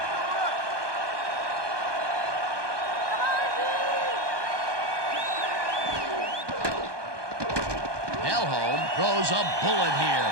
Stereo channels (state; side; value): late; left; 1.2 ms